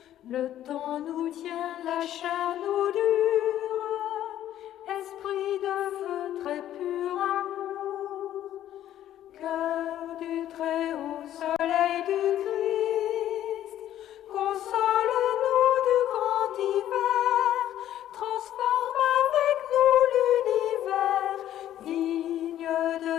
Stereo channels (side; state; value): right; quieter; 12.0 dB